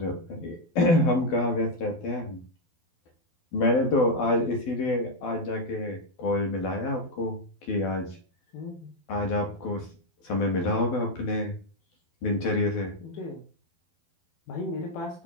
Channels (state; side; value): late; right; 12 ms